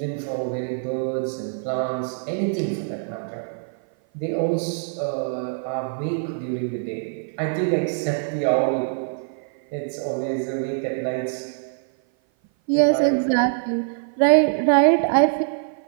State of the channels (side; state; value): left; silent; 56 dB below the other